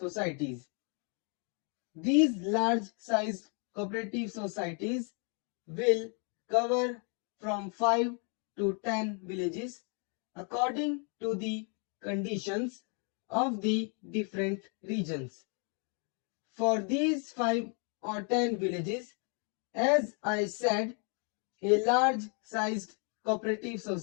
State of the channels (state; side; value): quieter; right; 38.7 dB